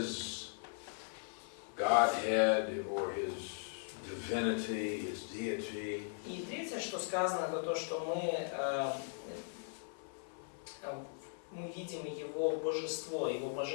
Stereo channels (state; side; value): silent; right; 52 dB below the other